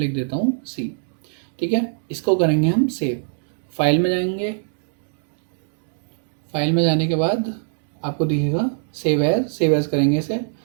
देता हूँ सी। ठीक है, इसको करेंगे हम सेव। फाइल में जाएंगे, फाइल में जाने के बाद आपको दिखेगा सेव एज। सेव एज करेंगे इसे,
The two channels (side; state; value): left; silent; digital silence